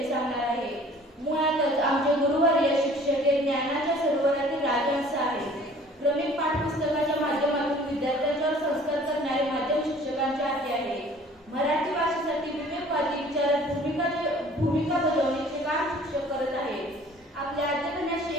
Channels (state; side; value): normal; both; correlation 0.51